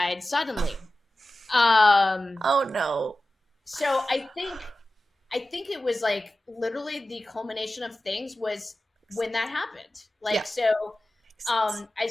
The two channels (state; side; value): normal; both; correlation 0.95